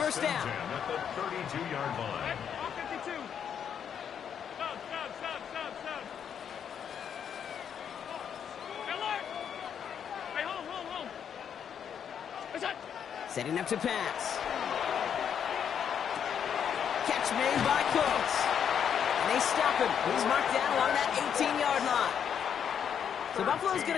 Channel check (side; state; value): right; quieter; 8.2 dB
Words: down. At the 32-yard line. All 52. Sub. Hey, look. Hey, hold. What's that? Setting up to pass. Catch made by Cooks. And they stop him. He's marked down along that 18-yard line. So Buffalo's going